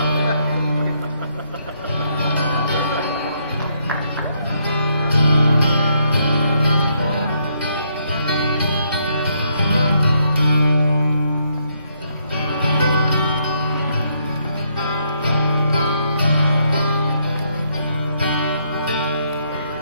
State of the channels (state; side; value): inverted; both; correlation -0.74